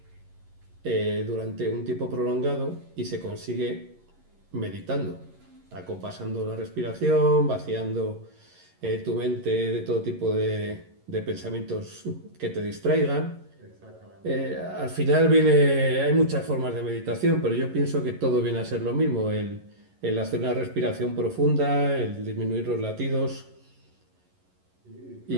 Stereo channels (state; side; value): late; left; 11 ms